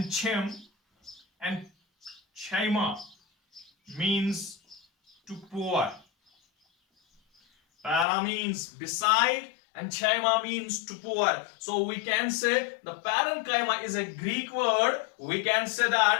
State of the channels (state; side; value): drops out; right; at 8.1 s